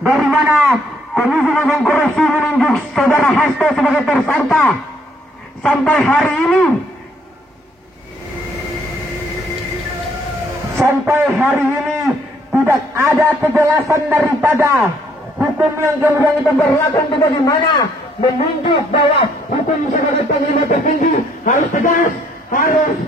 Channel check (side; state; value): both; normal; correlation 0.66